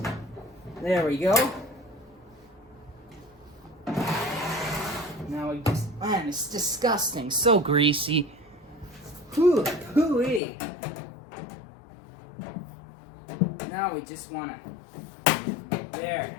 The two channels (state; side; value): drops out; right; at 10.4 s